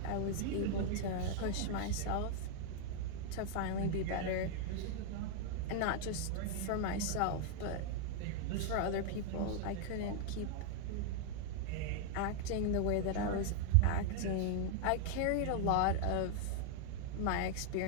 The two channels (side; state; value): both; different; correlation 0.00